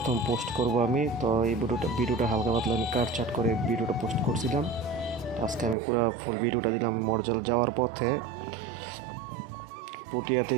পোস্ট করব আমি। তো এই ভিডিওটা হালকা পাতলা আমি কাটছাট করে ভিডিওটা পোস্ট করছিলাম। আজকে আমি পুরো ফুল ভিডিওটা দিলাম। মরজাল যাওয়ার পথে পুঠিয়া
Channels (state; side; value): drops out; left; at 5.8 s